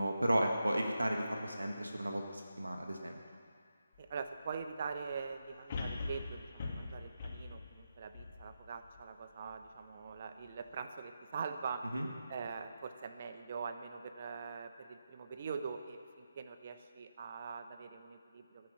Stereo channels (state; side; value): inverted; both; correlation -0.89